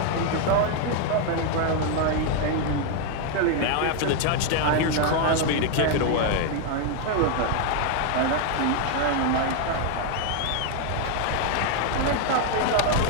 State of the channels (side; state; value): both; different; correlation 0.00